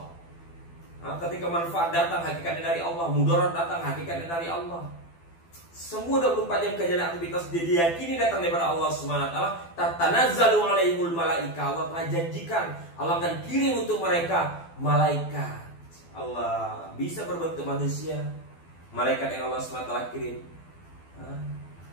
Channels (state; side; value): late; right; 12 ms